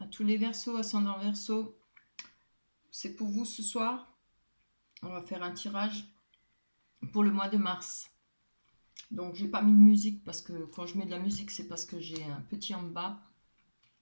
tous les Verseaux, ascendant Verseau. C'est pour vous ce soir. On va faire un tirage pour le mois de mars. Donc j'ai pas mis de musique parce que quand je mets de la musique, c'est parce que j'ai un petit en bas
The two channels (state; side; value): inverted; both; correlation -1.00